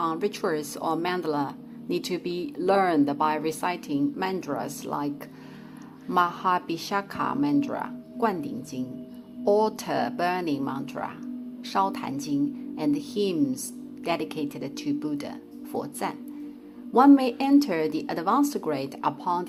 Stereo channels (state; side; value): identical; both; correlation 1.00